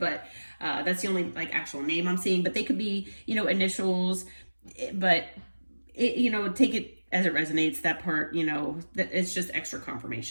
but that's the only like actual name I'm seeing. But they could be, initials, but take it as it resonates. That part, that it's just extra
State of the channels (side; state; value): both; inverted; correlation -1.00